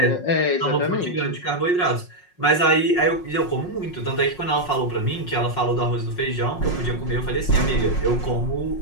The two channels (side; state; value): right; late; 5.5 ms